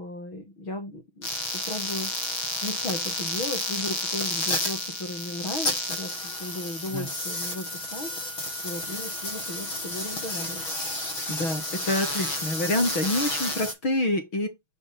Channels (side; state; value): right; late; 6.2 ms